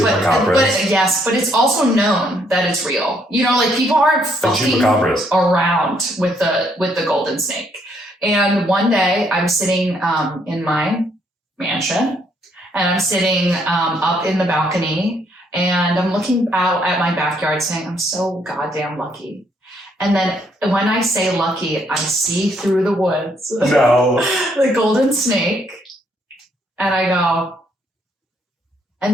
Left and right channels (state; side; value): normal; both; correlation 0.70